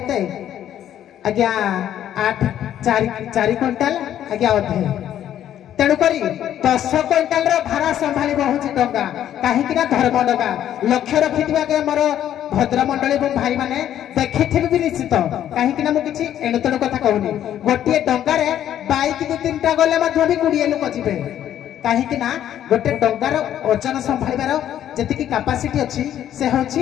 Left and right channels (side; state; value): right; quieter; 11.0 dB